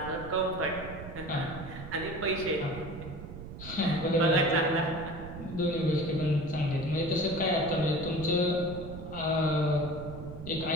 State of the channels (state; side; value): noise; right; rumble, 11 dB below the sound